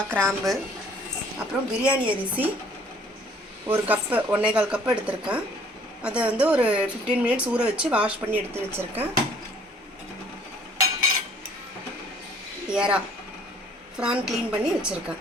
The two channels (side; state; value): both; normal; correlation 0.57